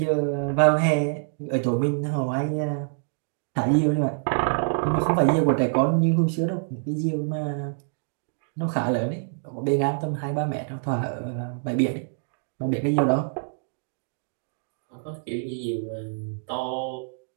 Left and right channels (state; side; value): silent; left; digital silence